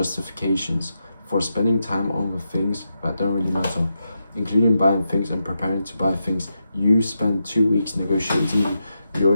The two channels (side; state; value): both; inverted; correlation -0.86